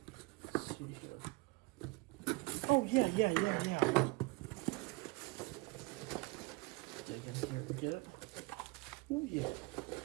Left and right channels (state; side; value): quieter; left; 24.6 dB